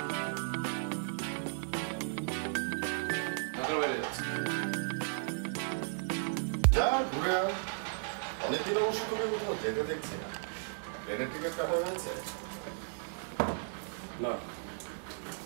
যা ঘুরে আয়, অনেকদিন অবশ্য তোকে কোথাও যেতে দেখছি না। প্লেনের টিকিট কাটা হয়েছে? না,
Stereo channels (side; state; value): left; silent; digital silence